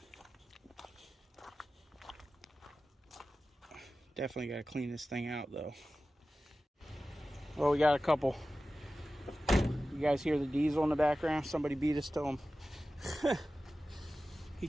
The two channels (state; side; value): normal; both; correlation 0.95